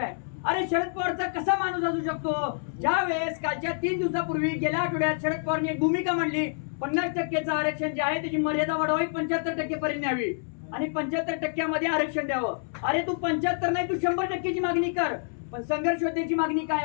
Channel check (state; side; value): silent; right; 60 dB below the other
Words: अरे शरद पवारचा कसा माणूस असू शकतो? ज्या वेळेस कालच्या 3 दिवसापूर्वी गेल्या आठवड्यात शरद पवारने एक भूमिका मांडली, 50% आरक्षण जे आहे त्याची मर्यादा वाढवावी, 75% पर्यंत न्यावी आणि 75% आरक्षण द्यावं. अरे तू 75 नाही, तू 100%ची मागणी कर. पण संघर्ष योद्ध्याची मागणी काय